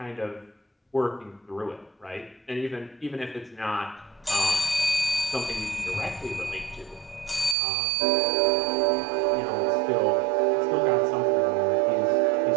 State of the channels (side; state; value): left; drops out; at 7.6 s